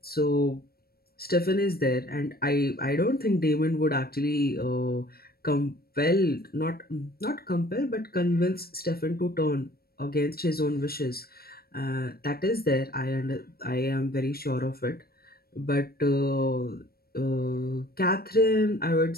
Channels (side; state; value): right; late; 0.44 ms